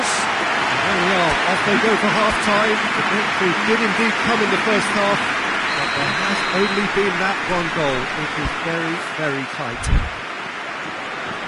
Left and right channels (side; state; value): both; identical; correlation 1.00